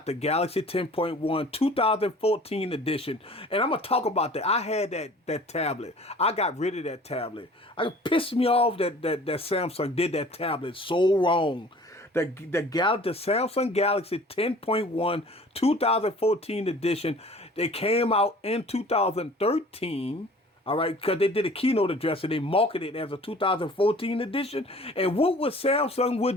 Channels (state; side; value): normal; both; correlation 0.48